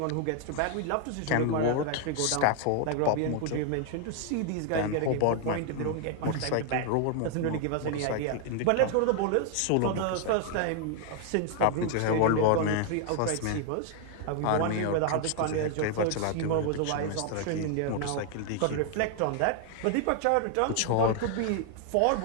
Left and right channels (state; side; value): different; both; correlation 0.00